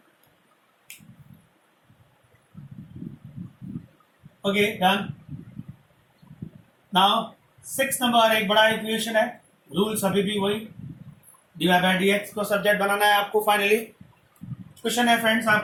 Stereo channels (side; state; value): both; identical; correlation 1.00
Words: Okay done. नाउ 6 नंबर एक बड़ा इक्वेशन है, रूल्स अभी भी वही, d Y by D x को सब्जेक्ट बनाना है आपको। फाइनली क्वेश्चन है फ्रेंड्स